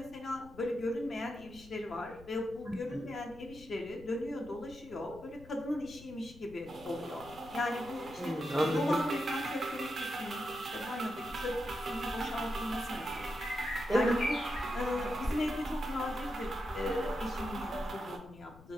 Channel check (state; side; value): noise; left; rumble, 19 dB below the sound